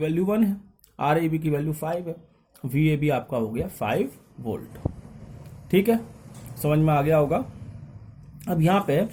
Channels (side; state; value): both; identical; correlation 1.00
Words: 1 है, RAB की वैल्यू 5 है, VAB आपका हो गया 5 वोल्ट। ठीक है, समझ में आ गया होगा। अब यहां पे